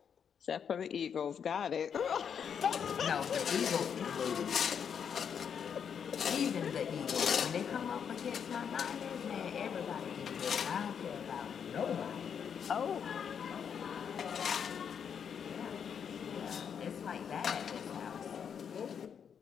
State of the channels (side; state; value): right; quieter; 7.5 dB